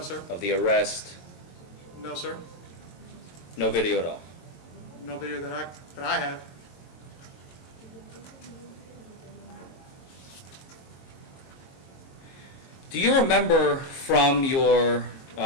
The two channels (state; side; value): late; right; 22 ms